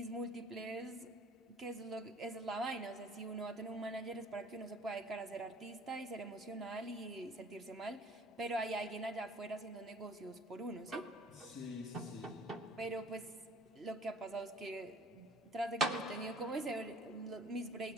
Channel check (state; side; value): normal; both; correlation 0.52